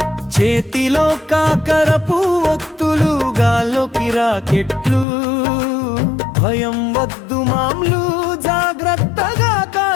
చేతిలో కాకరపు ఒత్తులు, గాల్లోకి రాకెట్లు, భయం వద్దు మామ్లు, జాగ్రత్తగా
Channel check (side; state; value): right; drops out; at 5.1 s